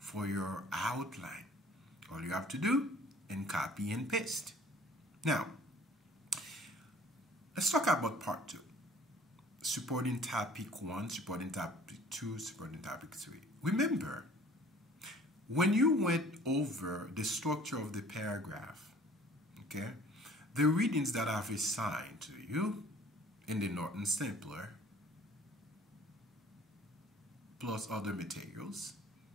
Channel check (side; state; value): both; normal; correlation 0.52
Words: your outline. All you have to do is copy and paste. Now, let's talk about part 2. Supporting topic 1, supporting topic 2, supporting topic 3. Remember, when you went over the structure of the paragraph, okay, the readings that I've assigned to you in the Norton Stapler, plus other materials,